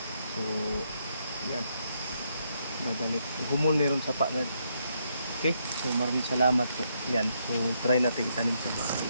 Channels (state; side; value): inverted; both; correlation -0.77